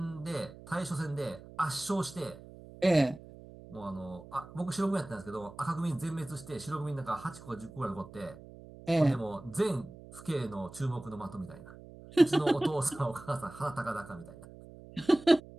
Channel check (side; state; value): right; noise; hum, 17 dB below the sound